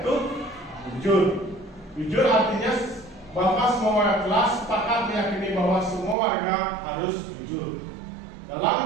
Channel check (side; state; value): left; drops out; at 6.2 s